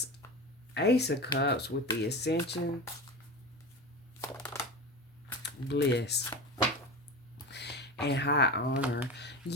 Ace of Cups with the Ascension, Bliss, and High Honor.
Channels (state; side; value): normal; both; correlation 0.27